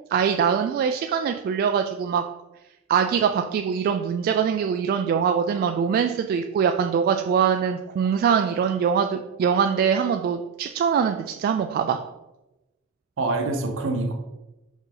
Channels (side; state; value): left; quieter; 6.6 dB